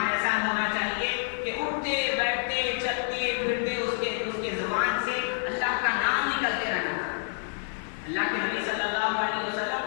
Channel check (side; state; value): right; silent; 59 dB below the other